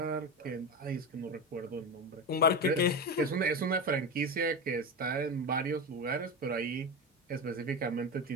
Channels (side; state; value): both; normal; correlation 0.20